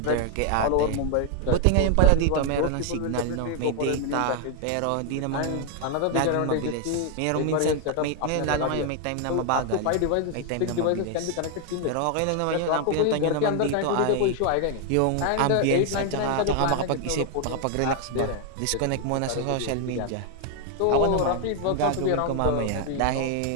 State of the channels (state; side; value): different; both; correlation 0.00